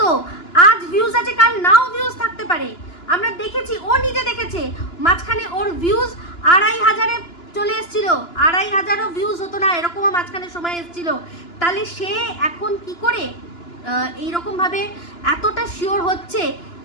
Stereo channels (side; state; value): right; late; 2.9 ms